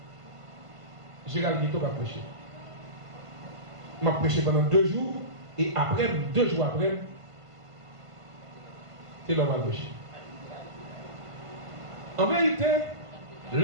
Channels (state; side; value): late; left; 1.5 ms